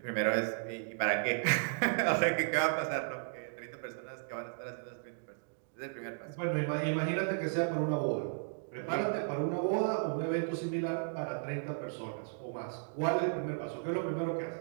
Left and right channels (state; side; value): silent; left; digital silence